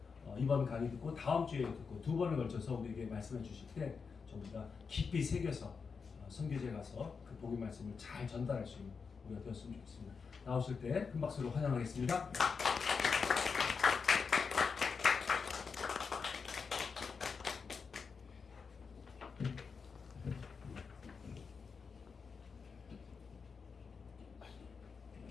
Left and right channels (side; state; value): right; quieter; 5.4 dB